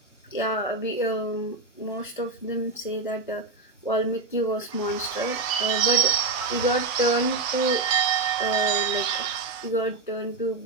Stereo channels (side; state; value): left; quieter; 3.7 dB